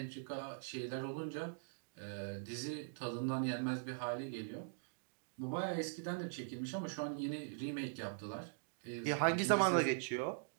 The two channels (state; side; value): silent; left; digital silence